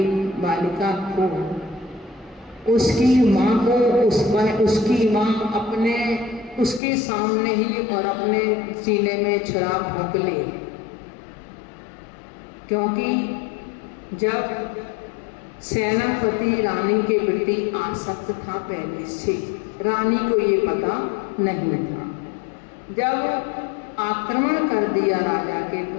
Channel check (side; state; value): right; drops out; at 6.8 s